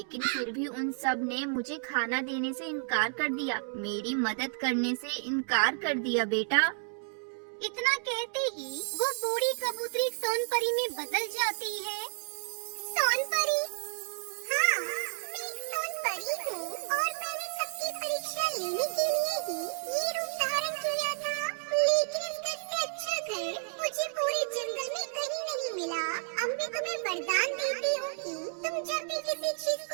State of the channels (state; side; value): silent; left; digital silence